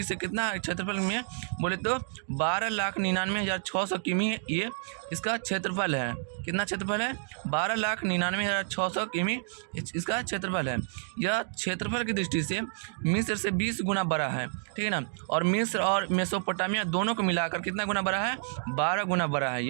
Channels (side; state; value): left; silent; digital silence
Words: से कितना है? क्षेत्रफल में बोले तो 12,99,600 किमी ये इसका क्षेत्रफल है। कितना क्षेत्रफल है? 12,99,600 किमी इसका क्षेत्रफल है। यह क्षेत्रफल की दृष्टि से मिस्र से 20 गुना बड़ा है। ठीक है ना। और मिस्र और मेसोपोटामिया दोनों को मिलाकर कितना गुना बड़ा है? 12 गुना बड़ा है।